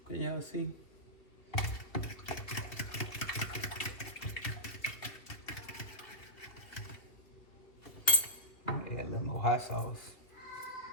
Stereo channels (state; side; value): late; right; 2.5 ms